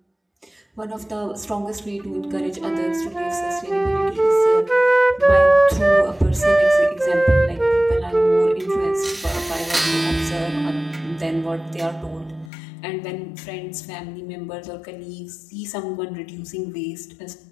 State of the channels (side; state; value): right; drops out; at 12.5 s